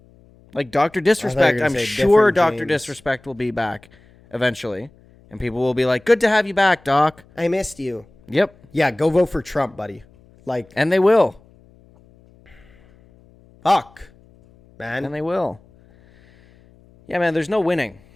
like Dr. Disrespect. gonna I'm say sure different Dr. James. Disrespect will be back eventually, and people will be like, "Good to have you back, Doc." I missed you. Yep. Yeah, go vote for Trump, buddy. Like, And they will. fuck, man. And they will. Yeah, man, there's no winning.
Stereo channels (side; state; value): left; noise; hum, 28 dB below the sound